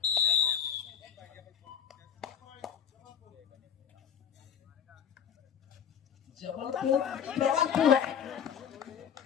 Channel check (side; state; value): right; quieter; 8.4 dB